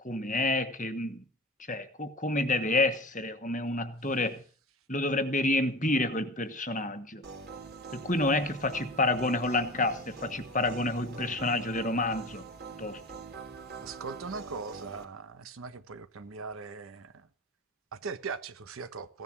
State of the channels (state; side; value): normal; both; correlation 0.33